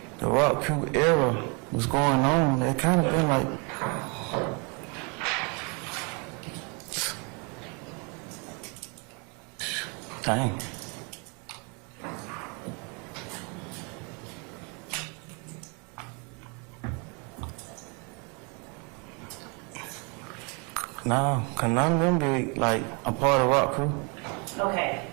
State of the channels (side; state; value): left; quieter; 33.4 dB